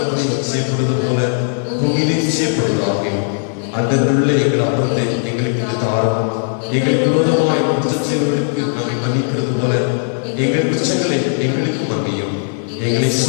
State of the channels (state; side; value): silent; right; 68 dB below the other